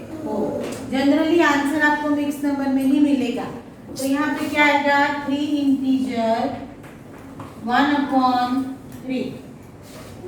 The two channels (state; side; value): identical; both; correlation 1.00